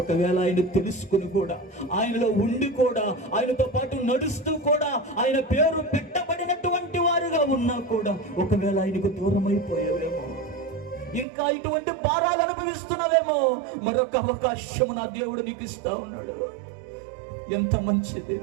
ఆయన తెలుసుకుని కూడా, ఆయనలో ఉండి కూడా, ఆయనతో పాటు నడుస్తూ కూడా, ఆయన పేరు పెట్టబడినటువంటి వారుగా ఉన్నా కూడా, ఒకవేళ ఆయనకు దూరం అయిపోయావేమో, ఇంకా ఇటువంటి భారాలు అనుభవిస్తున్నావేమో, మరొక అవకాశం నా దేవుడు నీకు ఇస్తా ఉన్నాడు. ఎంత మంచి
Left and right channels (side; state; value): left; drops out; at 11.2 s